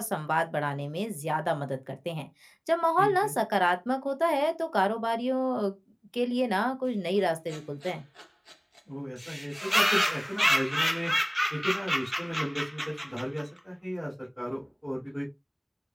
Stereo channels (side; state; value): both; identical; correlation 1.00